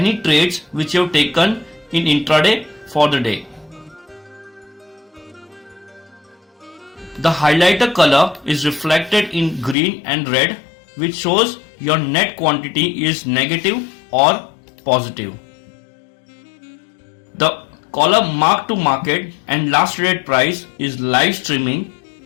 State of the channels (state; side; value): drops out; right; at 9.8 s